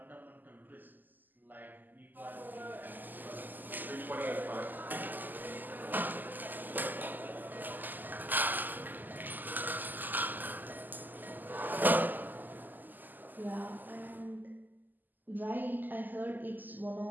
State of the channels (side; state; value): left; late; 0.086 ms